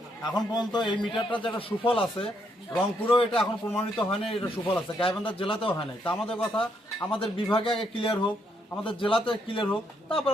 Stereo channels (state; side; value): normal; both; correlation 0.74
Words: এখন পর্যন্ত এই মিটারটা যেটা সুফল আছে, রংপুরেও এটা এখন প্রমাণিত হয়নি এটা সুফল আছে, গাইবান্ধা জেলাতেও হয় নাই। তা আমাদের কথা, আমাদের বিভাগে আগে ক্লিয়ার হোক, আমাদের জেলাতে ক্লিয়ার হোক, তারপর